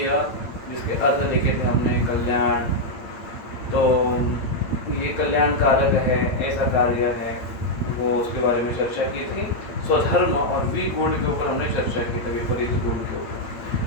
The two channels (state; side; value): late; right; 8.7 ms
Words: जिसके अर्थ लिखे थे हमने, कल्याण। तो ये कल्याण कारक है, ऐसा कार्य है, वो उसके बारे में चर्चा की थी। स्वधर्म और विगुण के ऊपर हमने चर्चा की थी, विपरीत गुण के